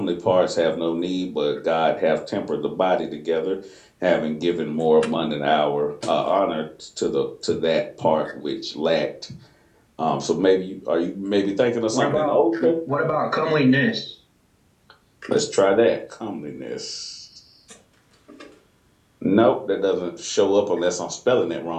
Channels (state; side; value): identical; both; correlation 1.00